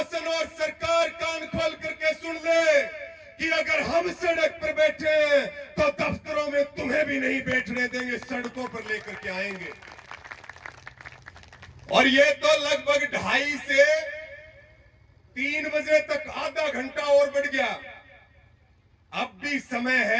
और सरकार कान खोल करके सुन ले कि अगर हम सड़क पर बैठे हैं तो दफ्तरों में तुम्हें भी नहीं बैठने देंगे, सड़कों पर लेकर के आएंगे। और ये तो लगभग 2:30 से 3 बजे तक आधा घंटा और बढ़ गया। अब भी समय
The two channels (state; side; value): identical; both; correlation 1.00